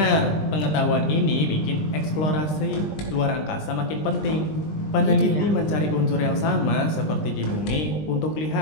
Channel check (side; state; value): right; late; 20 ms